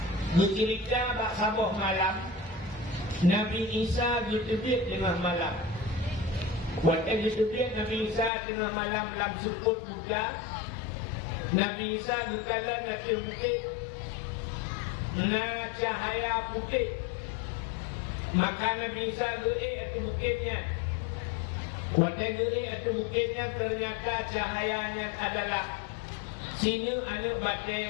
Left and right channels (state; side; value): drops out; right; at 8.3 s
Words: bercerita bak sabuh malam Nabi Isa ditebik tengah malam. Waktu ditebik Nabi Isa tengah malam lam seput buka. Nabi Isa berkala nanti bukit na cahaya putih. Maka Nabi Isa gerik atas bukitnya. Waktu gerik atas bukitnya ternyata cahayanya adalah sini anak